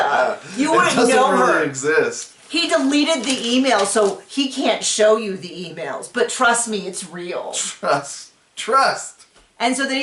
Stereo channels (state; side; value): identical; both; correlation 1.00